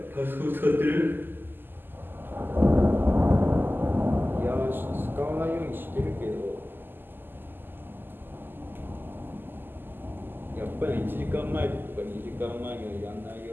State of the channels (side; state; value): left; late; 0.094 ms